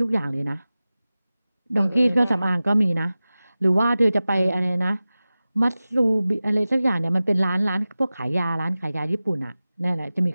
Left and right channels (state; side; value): inverted; both; correlation -0.96